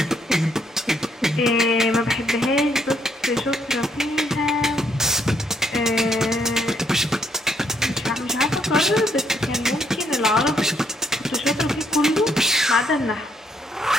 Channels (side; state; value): both; normal; correlation 0.72